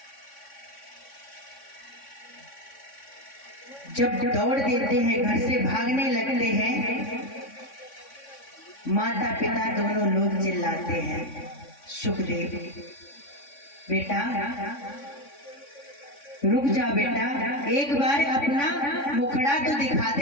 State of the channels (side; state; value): right; late; 3.6 ms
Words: जब दौड़ देते हैं, घर से भागने लगते हैं, माता पिता दोनों लोग चिल्लाते हैं सुखदेव बेटा रुक जा बेटा, एक बार अपना मुखड़ा तो दिखा